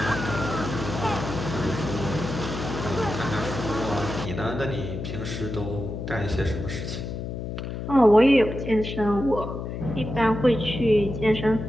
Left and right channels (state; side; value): noise; left; hum, 6 dB below the sound